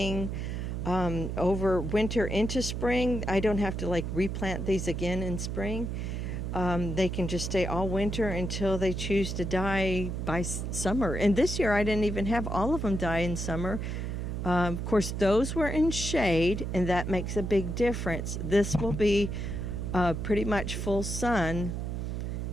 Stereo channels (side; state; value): right; noise; hum, 3 dB below the sound